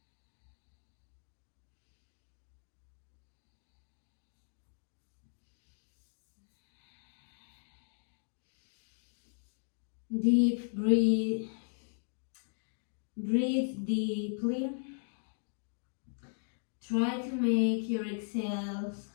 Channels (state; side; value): silent; right; digital silence